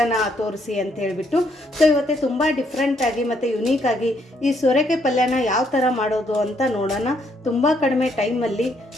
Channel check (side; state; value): both; normal; correlation 0.71